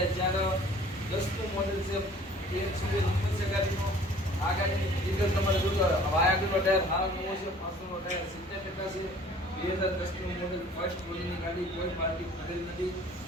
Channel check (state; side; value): normal; both; correlation 0.51